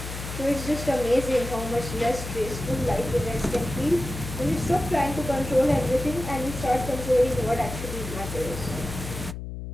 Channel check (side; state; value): left; noise; hum, 8 dB below the sound